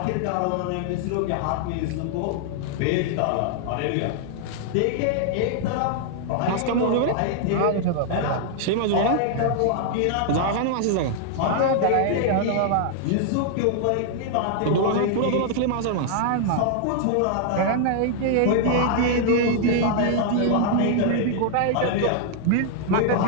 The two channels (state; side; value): different; both; correlation -0.01